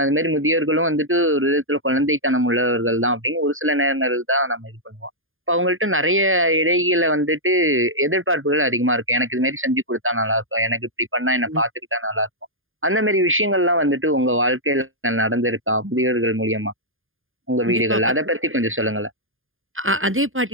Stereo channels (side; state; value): left; late; 0.59 ms